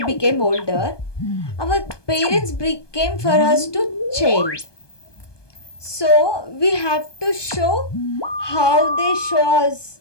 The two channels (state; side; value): late; right; 1.2 ms